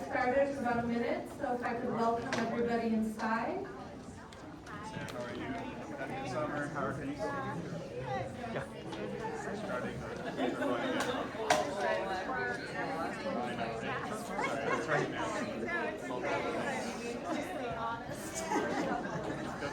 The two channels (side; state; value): both; identical; correlation 1.00